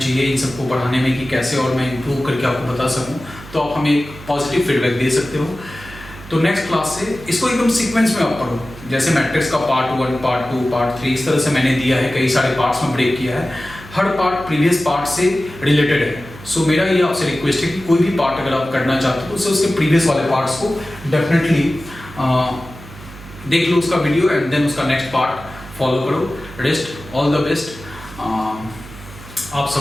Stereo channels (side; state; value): right; noise; hum, 17 dB below the sound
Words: इन सबको पढ़ाने में कि कैसे और मैं इम्प्रूव करके आपको बता सकूं, तो आप हमें पॉजिटिव फीडबैक दे सकते हो। तो नेक्स्ट क्लास से इसको एकदम सीक्वेंस में आप पढ़ो, जैसे मैट्रिक्स का पार्ट 1, पार्ट 2, पार्ट 3 इस तरह से मैंने दिया है, कई सारे पार्ट्स में ब्रेक किया है। हर पार्ट प्रीवियस पार्ट से रिलेटेड है। सो मेरा ये आपसे रिक्वेस्ट है कि कोई भी पार्ट अगर आप करना चाहते हो तो उसके प्रीवियस वाले पार्ट्स को डेफिनेटली देख लो उसका वीडियो एंड देन उसका नेक्स्ट पार्ट फॉलो करो। रेस्ट ऑल द बेस्ट आप